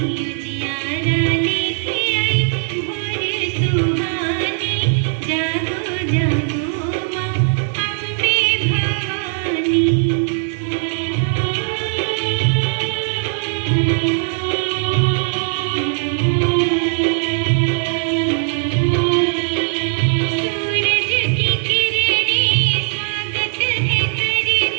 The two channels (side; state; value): left; silent; 67 dB below the other